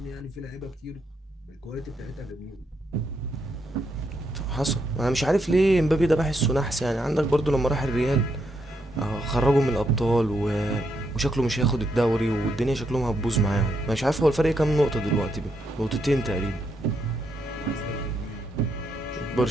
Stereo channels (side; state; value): both; normal; correlation 0.78